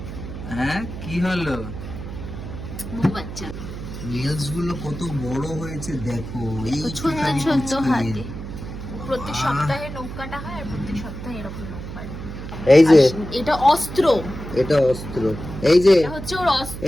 হ্যাঁ কি হলো? বাচ্চা নেলস গুলো কত বড় হয়েছে দেখো। এই ছোট ছোট হাতে প্রত্যেক আহ। সপ্তাহে নখ কাটা হয় আর প্রত্যেক সপ্তাহে এরকম নখ কাটে। এই যে এটা অস্ত্র, এটা অস্ত্র। এই যে এটা হচ্ছে ওর অস্ত্র।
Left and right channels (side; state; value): right; noise; hum, 9 dB below the sound